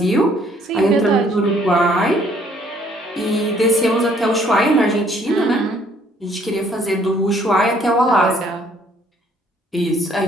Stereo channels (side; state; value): both; normal; correlation 0.62